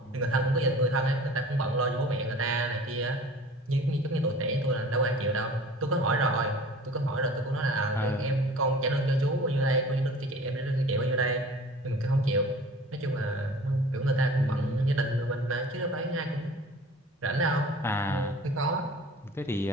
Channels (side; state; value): both; normal; correlation 0.44